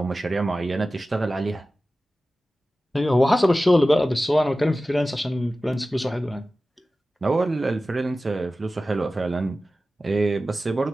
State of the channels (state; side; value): normal; both; correlation 0.95